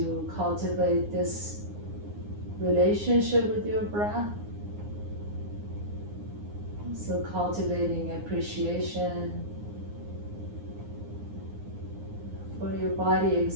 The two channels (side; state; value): left; late; 9.7 ms